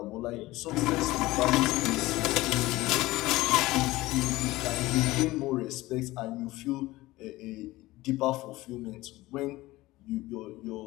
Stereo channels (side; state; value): right; quieter; 18.6 dB